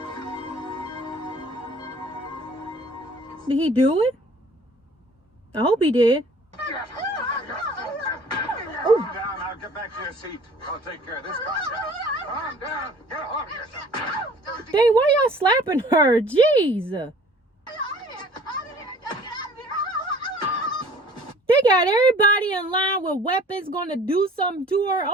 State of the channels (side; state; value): both; normal; correlation 0.50